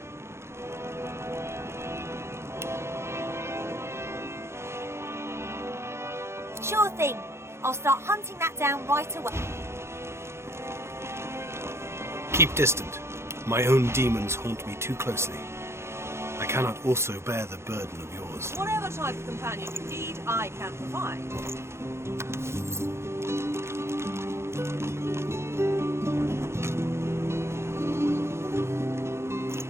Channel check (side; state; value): left; late; 0.13 ms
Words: Sure thing. I'll start hunting that down right away. Keep distant. My own demons haunt me too closely. I cannot also bear the burden of yours. Whatever type of companion you need, I can provide.